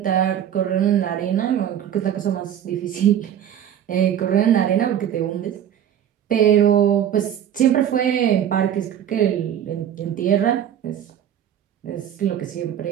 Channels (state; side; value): quieter; left; 10.0 dB